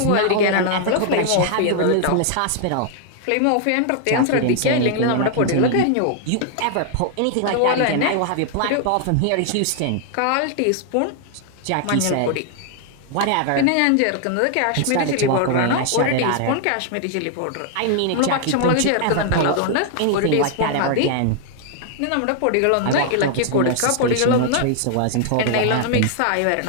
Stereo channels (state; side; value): different; both; correlation 0.00